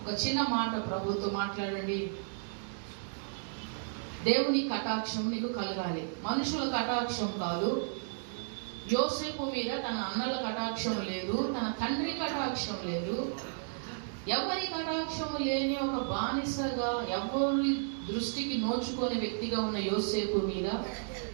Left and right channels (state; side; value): silent; left; digital silence